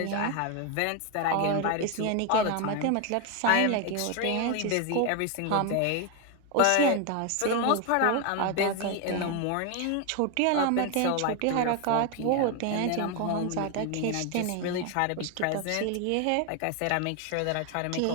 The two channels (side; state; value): both; different; correlation 0.01